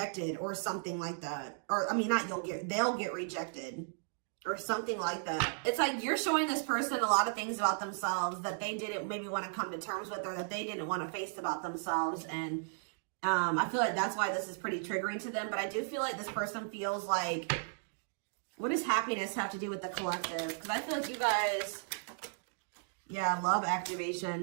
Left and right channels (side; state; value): left; silent; digital silence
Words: or something like that. Or, I mean, they'll get rejected or something like that. It's like you're showing this person a lot of things about themselves that they didn't maybe want to come to terms with, or that they didn't want to face about themselves. And I feel like that's why this is pretty triggering to them. But I do feel like this person feels like, what does happiness have to do with the collective? Because I feel like you guys, yeah, love